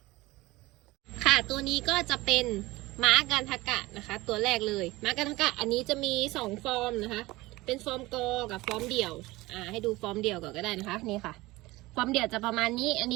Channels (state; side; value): quieter; left; 20.1 dB